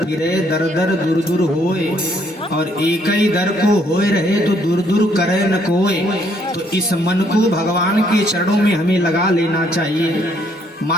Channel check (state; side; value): normal; both; correlation 0.68